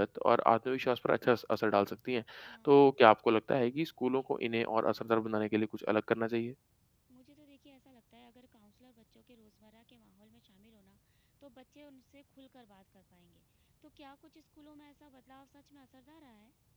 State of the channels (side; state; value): both; identical; correlation 1.00